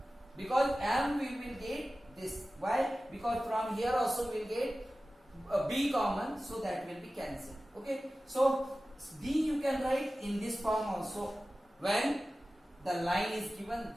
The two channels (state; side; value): normal; both; correlation 0.96